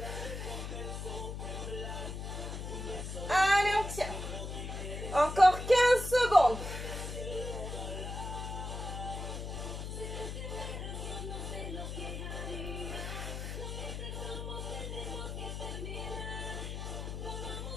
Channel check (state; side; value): noise; left; hum, 6 dB below the sound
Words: Allez, on tient. Encore 15 secondes.